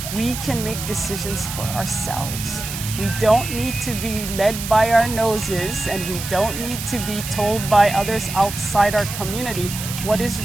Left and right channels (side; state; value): right; noise; hiss, 7 dB below the sound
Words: we can make decisions for ourselves. We don't need to be led by our noses, and we don't need to be told by others outside our community what is